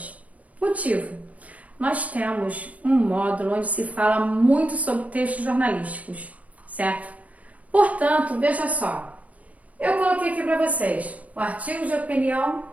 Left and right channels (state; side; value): late; left; 0.069 ms